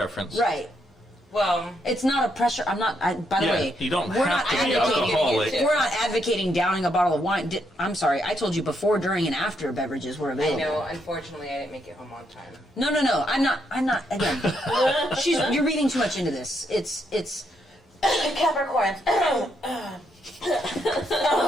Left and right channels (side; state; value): both; normal; correlation 0.77